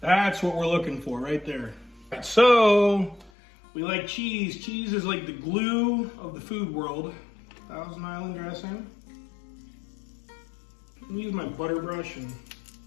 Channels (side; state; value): right; drops out; at 3.3 s